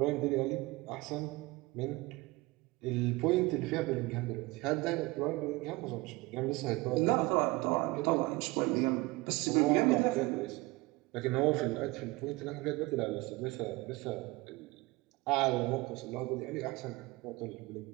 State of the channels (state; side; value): quieter; left; 22.1 dB